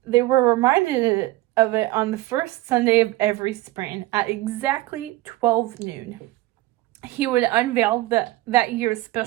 of it on the first Sunday of every spring at exactly 12 noon. He would unveil that year's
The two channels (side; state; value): left; quieter; 17.6 dB